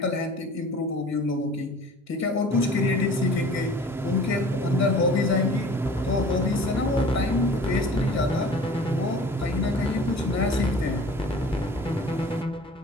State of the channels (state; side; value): normal; both; correlation 0.45